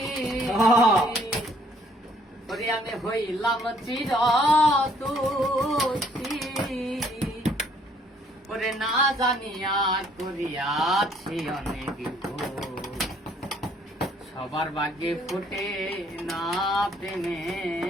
ওরে আমি হইলাম চির দোষী ওরে না জানিয়া করিয়াছি অনেক ভুল সবার ভাগ্যে ফুটে না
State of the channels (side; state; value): both; normal; correlation 0.63